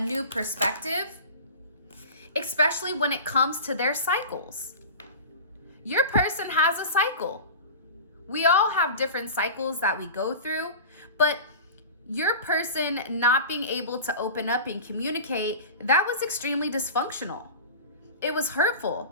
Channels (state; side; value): inverted; both; correlation -0.33